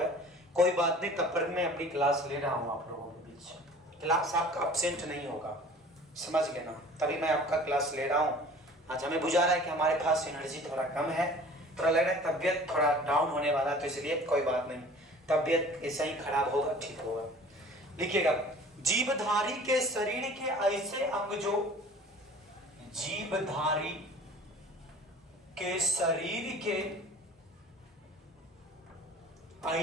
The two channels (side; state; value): both; normal; correlation 0.46